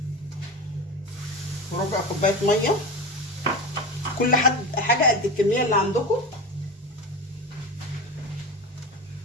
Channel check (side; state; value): both; normal; correlation 0.25